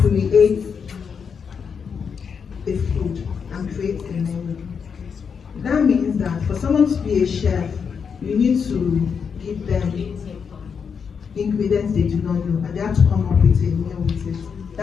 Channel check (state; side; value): quieter; right; 6.4 dB